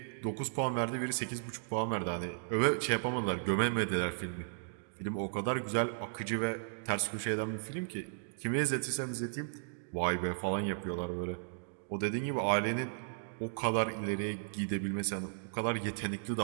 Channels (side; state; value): left; silent; digital silence